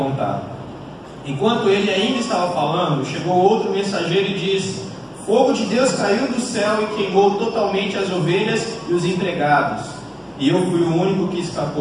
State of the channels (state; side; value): identical; both; correlation 1.00